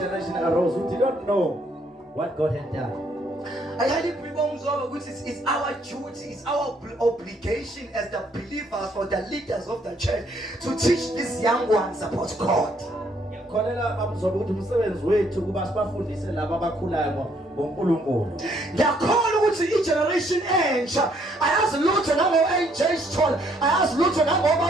arose who did not know what God had done. I highly believe it's our duty, it's our obligation as the believers or the leaders of the church to teach these young ones about God. Ngiyakholwa ukuthi i-generation entsha ayazi lutho nango-AJ Stone, ayazi lutho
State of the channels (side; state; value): both; normal; correlation 0.68